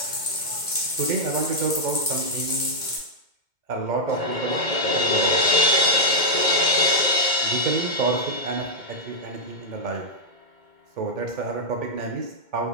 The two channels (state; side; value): late; left; 2.1 ms